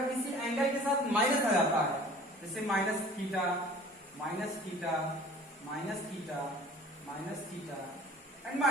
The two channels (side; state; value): both; normal; correlation 0.46